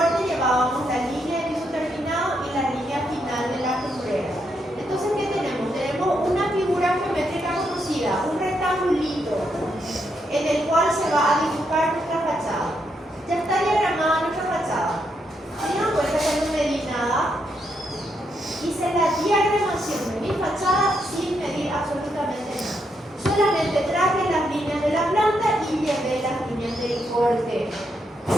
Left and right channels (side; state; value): both; normal; correlation 0.79